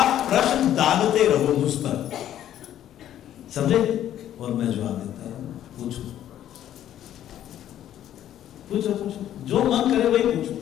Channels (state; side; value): quieter; right; 11.5 dB